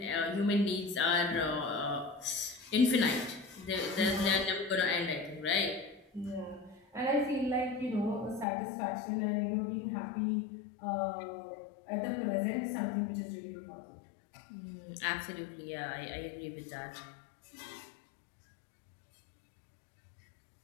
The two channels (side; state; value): right; drops out; at 8.5 s